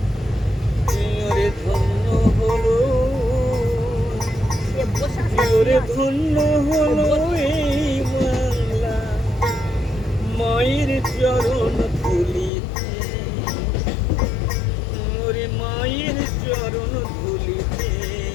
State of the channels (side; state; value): right; drops out; at 12.5 s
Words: ওরে ধন্য হলো, ওরে ধন্য হলো এই বাংলা মায়ের চরণ ধুলিতে। ওরে মায়ের চরণ ধুলিতে।